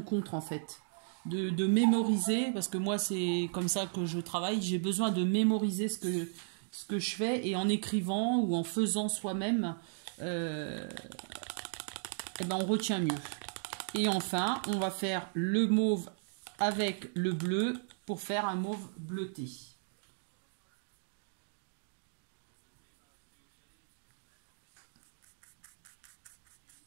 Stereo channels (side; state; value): left; silent; digital silence